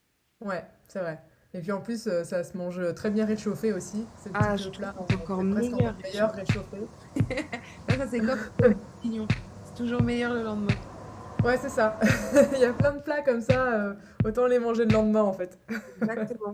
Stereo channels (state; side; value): identical; both; correlation 1.00